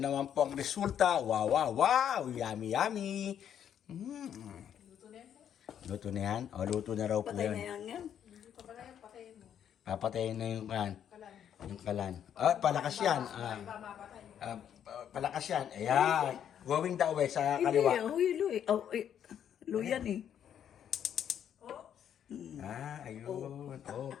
po ang resulta. Wow, wow, wow! Yummy, yummy! Luto na yan? O, luto na raw po Patay na yan. yan. Papatayin na yung kalan. Yung kalan. Ah, palakas yan. Palakas yan. Ayan. Going the way sa Hindi, kaliwa. huy. Luyan eh. Ayun. Oh.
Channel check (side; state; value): right; quieter; 9.3 dB